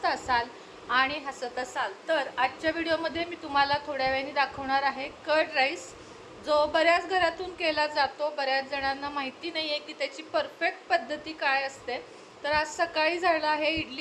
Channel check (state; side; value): identical; both; correlation 1.00